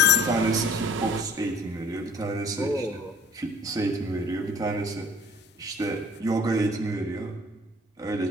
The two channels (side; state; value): both; normal; correlation 0.51